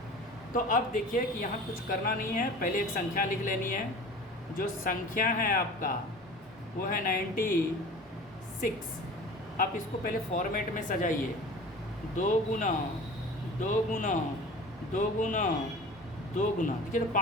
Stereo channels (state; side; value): normal; both; correlation 0.40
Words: तो अब देखिए कि यहाँ कुछ करना नहीं है, पहले एक संख्या लिख लेनी है। जो संख्या है आपका वो है 96। आप इसको पहले फॉर्मेट में सजाइए, 2 गुना 2 गुना 2 गुना 2 गुना, देखिए तो